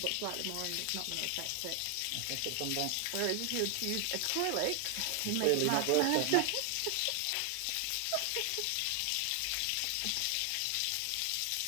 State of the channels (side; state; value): both; different; correlation 0.00